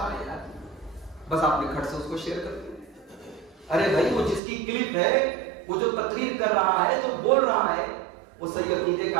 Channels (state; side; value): drops out; left; at 4.4 s